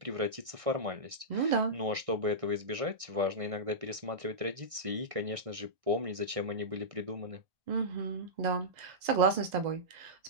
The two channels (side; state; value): left; late; 1.6 ms